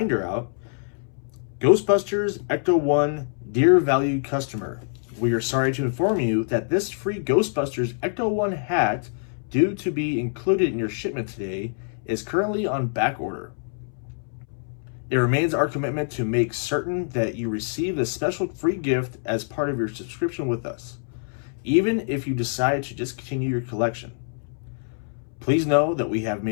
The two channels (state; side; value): silent; right; 62 dB below the other